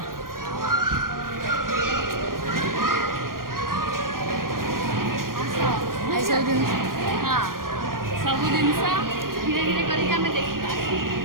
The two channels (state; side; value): late; left; 0.91 ms